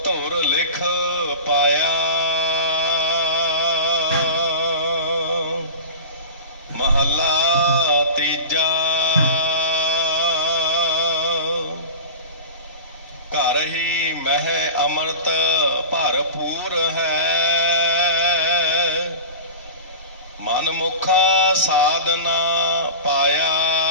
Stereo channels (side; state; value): both; inverted; correlation -0.33